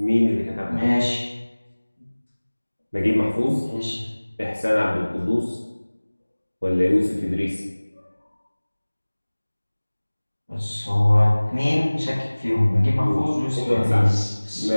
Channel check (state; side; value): inverted; both; correlation -1.00